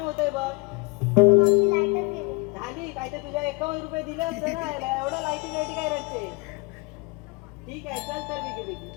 होतंय बघ. मावशी लाईटच गेली. झाली काय तर तुझ्या 51 रुपये दिले असते ना याला. एवढं लाईटी काय रडते? ठीक आहे चल तर बेगी बेगी.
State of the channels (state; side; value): quieter; right; 27.4 dB